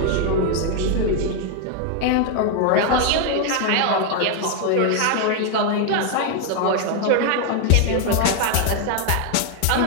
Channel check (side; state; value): both; different; correlation 0.00